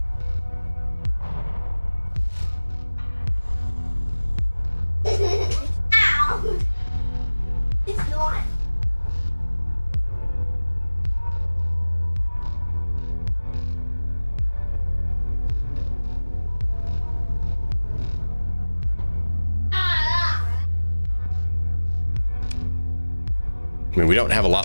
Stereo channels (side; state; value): both; inverted; correlation -1.00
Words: I mean, we don't have a